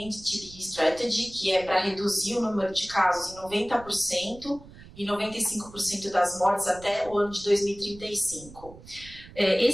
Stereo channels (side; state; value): right; noise; rumble, 19 dB below the sound